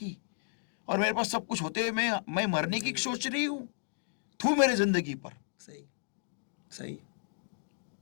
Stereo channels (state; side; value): silent; right; digital silence